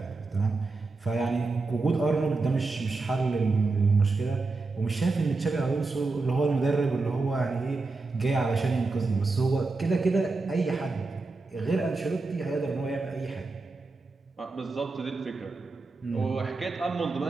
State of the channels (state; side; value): quieter; left; 3.7 dB